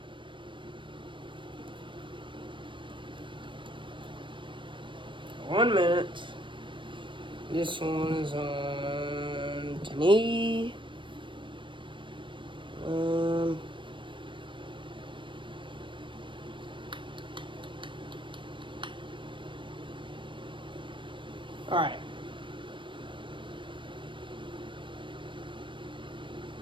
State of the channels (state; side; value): late; left; 0.24 ms